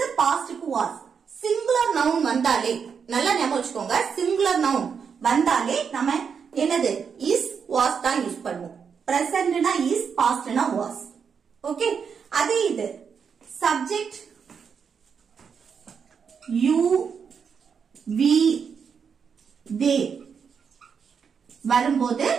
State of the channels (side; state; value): left; quieter; 6.5 dB